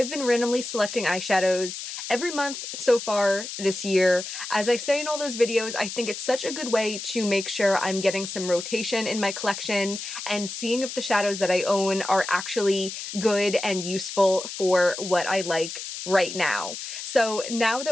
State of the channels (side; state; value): left; noise; hiss, 8 dB below the sound